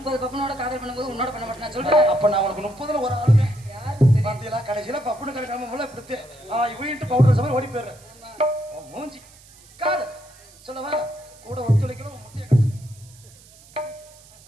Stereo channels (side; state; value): right; noise; hiss, 24 dB below the sound